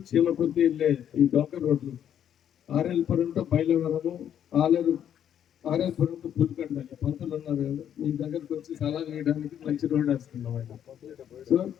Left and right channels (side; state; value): right; quieter; 9.6 dB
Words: చీమకుర్తి వెళ్ళే ఈ డొంక రోడ్లు, ఆర్ఎల్పురం టు బయలువరము, ఆర్ఎల్పురం టు పులికండ. పంతులు ఉన్నారు కదా, మీ దగ్గరకు వచ్చి సలహా వేయడానికి మంచి రోడ్ వేస్తున్నాం ఆయన. సో